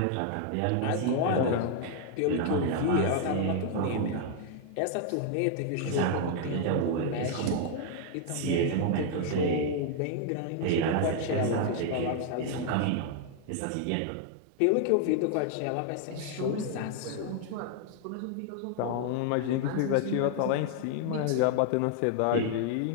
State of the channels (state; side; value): different; both; correlation 0.00